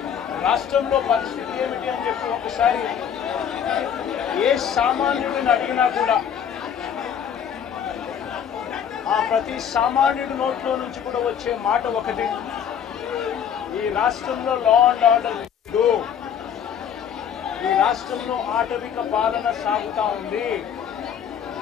రాష్ట్రంలో పరిస్థితి ఏమిటి అని చెప్పి ఒకసారి ఏ సామాన్యుడిని అడిగినా కూడా ఆ ప్రతి సామాన్యుడి నోట్లో నుంచి కూడా వచ్చే మాట ఒకటి, ఈ రాష్ట్రంలో లా అండ్ ఆర్డర్ లేదు, ఈ రాష్ట్రంలో ఆటవిక పాలన సాగుతా ఉంది,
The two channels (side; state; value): right; quieter; 8.4 dB